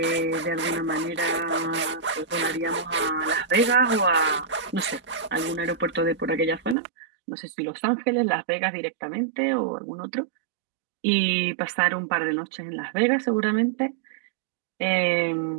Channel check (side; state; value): left; drops out; at 6.8 s